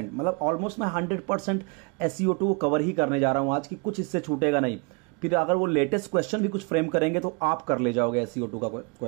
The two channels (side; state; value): left; quieter; 31.8 dB